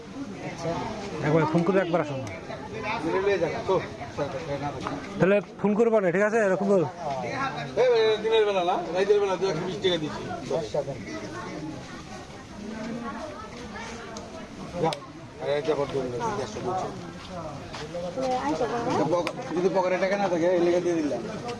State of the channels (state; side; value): identical; both; correlation 1.00